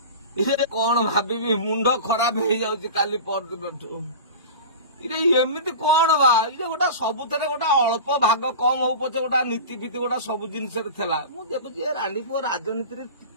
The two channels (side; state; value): both; inverted; correlation -0.32